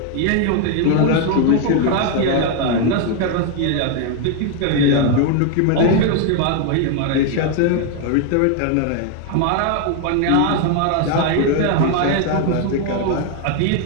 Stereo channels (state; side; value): different; both; correlation 0.01